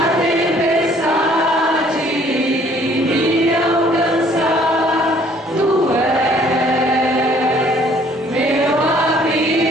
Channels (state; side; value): normal; both; correlation 0.59